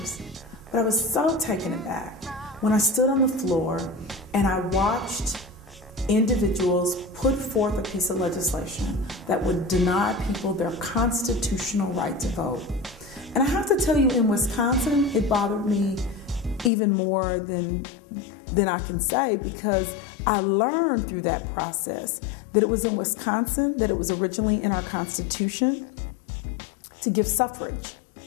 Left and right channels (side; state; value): right; drops out; at 16.7 s